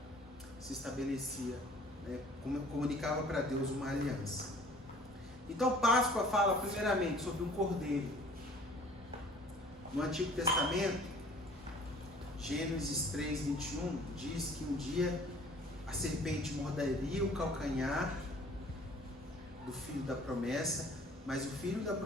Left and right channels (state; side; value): normal; both; correlation 0.52